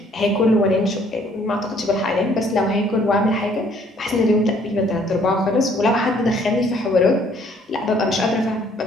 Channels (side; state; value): both; normal; correlation 0.62